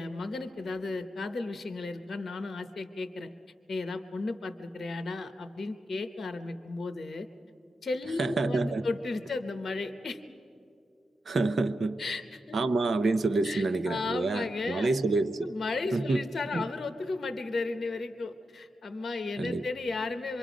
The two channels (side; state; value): both; normal; correlation 0.87